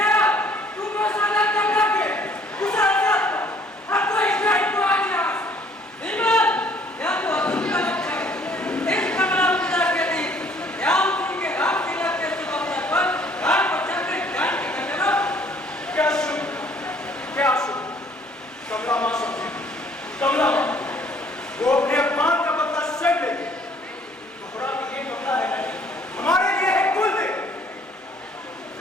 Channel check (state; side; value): normal; both; correlation 0.59